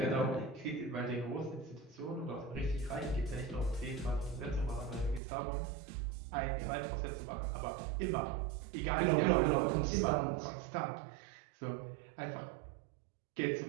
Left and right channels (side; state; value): left; drops out; at 5.2 s